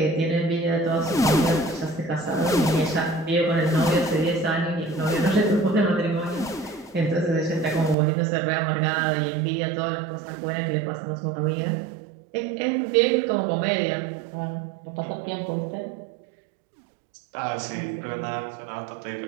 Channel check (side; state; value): left; drops out; at 8.0 s